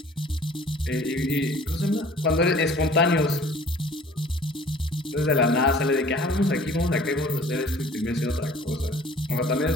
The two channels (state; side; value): normal; both; correlation 0.50